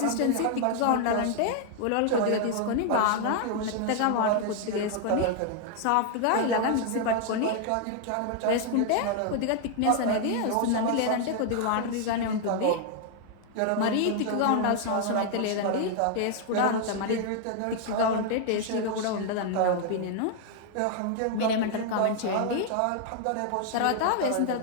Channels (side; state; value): both; different; correlation 0.00